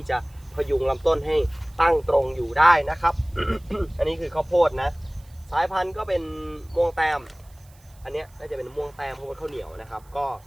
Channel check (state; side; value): noise; right; hiss, 29 dB below the sound